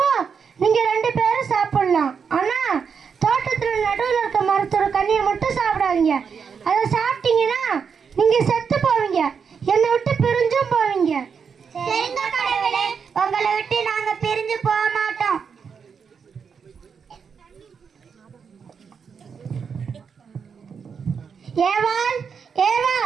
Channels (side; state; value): left; quieter; 6.3 dB